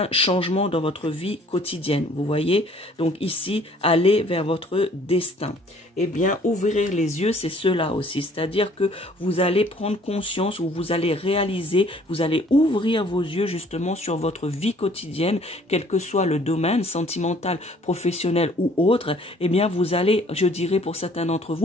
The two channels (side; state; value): both; normal; correlation 0.57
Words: changements dans votre vie quotidienne. Vous voyez, donc ici, aller vers votre destin. Eh bien, ouvrir les yeux, c'est cela aussi, c'est-à-dire que vous allez prendre conscience ou vous allez réaliser, vous allez ouvrir vos yeux justement sur votre vie quotidienne, quel que soit le domaine sentimental, professionnel ou autre. Eh bien, vous allez, je dirais pour certains d'entre